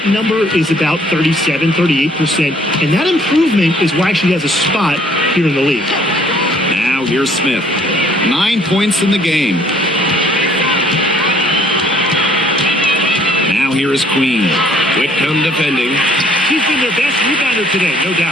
number is about 37, 38%. And that improvement is why she has a spot here in the league. Now here's Smith. 9 points in the game. Now here is Queen. Whitcomb defending. She's been their best rebounder today, no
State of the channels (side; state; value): both; normal; correlation 0.61